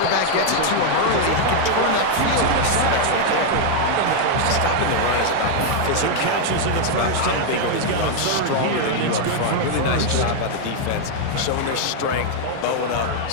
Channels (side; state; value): both; different; correlation 0.00